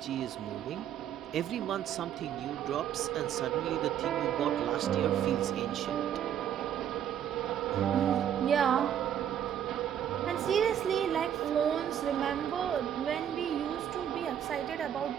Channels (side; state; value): left; quieter; 9.8 dB